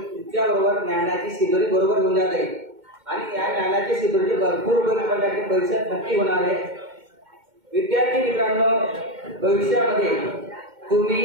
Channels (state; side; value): late; left; 2.1 ms